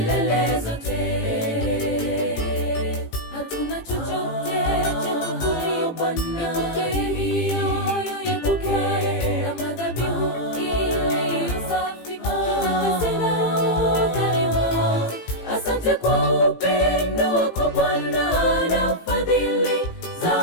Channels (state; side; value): late; right; 18 ms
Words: zote. Hatuna chochote cha kukulipa Bwana, ipokee kama dhabihu iliyo safi, tutakasina udhalimu. Asante kwa upendo wako Bwana na fadhili